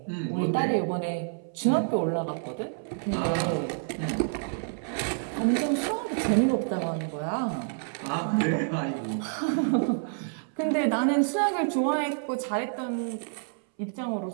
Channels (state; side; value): silent; left; 59 dB below the other